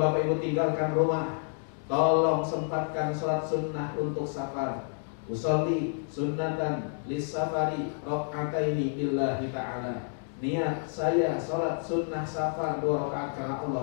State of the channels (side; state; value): right; silent; 58 dB below the other